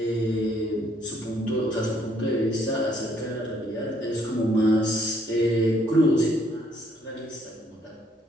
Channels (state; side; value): normal; both; correlation 0.67